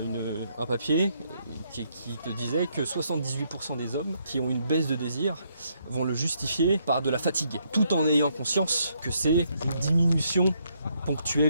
un papier qui te disait que 78% des hommes qui ont une baisse de désir vont le justifier par de la fatigue, tout en ayant conscience que c'est une diminution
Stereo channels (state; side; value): inverted; both; correlation -0.73